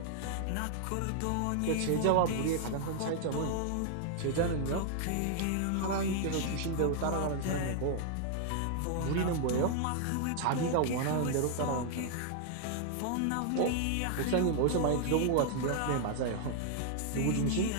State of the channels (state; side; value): different; both; correlation 0.00